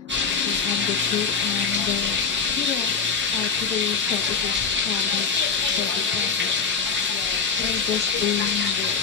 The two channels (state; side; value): quieter; right; 5.4 dB